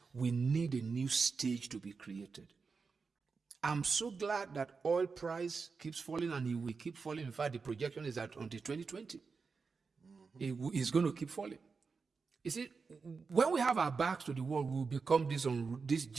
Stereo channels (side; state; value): left; quieter; 4.9 dB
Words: we need a new stage to be created. I'm so glad that oil price keeps falling, and it will keep falling. In fact, the projection is that until 2020, it's going to keep falling. You see, when we have our backs to the wall, we will become this